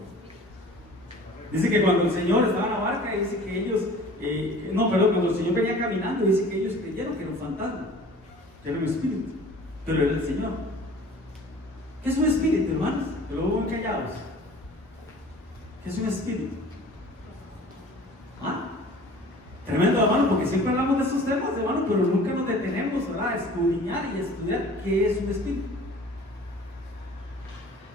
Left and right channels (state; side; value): normal; both; correlation 0.46